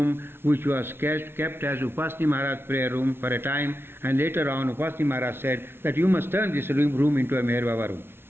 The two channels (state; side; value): late; left; 0.11 ms